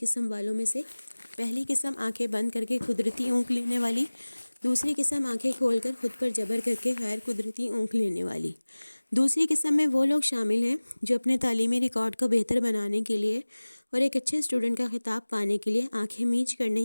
قسم والوں میں سے۔ پہلی قسم آنکھیں بند کر کے قدرتی اونگ لینے والی، دوسری قسم آنکھیں کھول کر خود پر جبر کر کے غیر قدرتی اونگ لینے والی۔ دوسری قسم میں وہ لوگ شامل ہیں جو اپنے تعلیمی ریکارڈ کو بہتر بنانے کے لیے اور ایک اچھے اسٹوڈنٹ کا خطاب پانے کے لیے آنکھیں میچ کر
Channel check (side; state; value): both; inverted; correlation -1.00